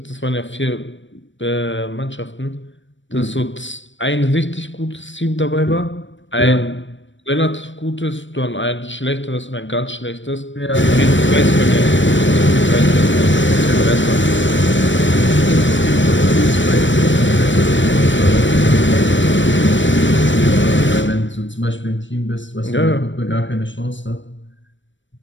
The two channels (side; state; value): right; late; 0.54 ms